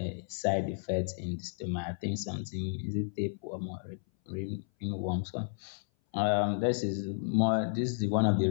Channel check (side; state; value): right; silent; 56 dB below the other